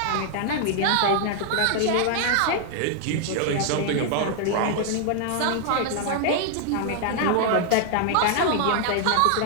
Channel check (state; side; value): different; both; correlation 0.00